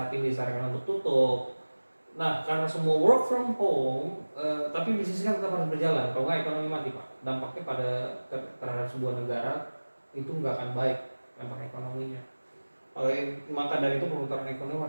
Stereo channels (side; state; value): both; inverted; correlation -1.00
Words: ini disarankan untuk tutup. Nah, karena semua work from home, tapi bisnis kan tetap harus berjalan. Kalau nggak ekonomi mati Pak. Dampaknya terhadap sebuah negara itu nggak akan baik dampak ekonominya. Maka dari itu perputaran ekonomi